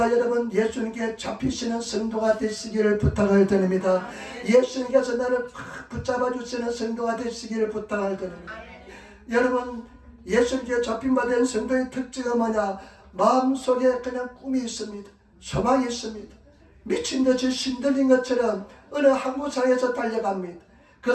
여러분 예수님께 잡히시는 성도가 되시기를 부탁을 드립니다. 예수님께서 나를 붙잡아 주시는 성도가 되시기를 부탁을 드립니다. 여러분 예수님께 잡힌 바 된 성도의 특징은 뭐냐, 마음속에 그냥 꿈이 있습니다. 소망이 있습니다. 미친듯이 신들린 것처럼 어느 항구상에서 달려갑니다.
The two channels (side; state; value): both; identical; correlation 1.00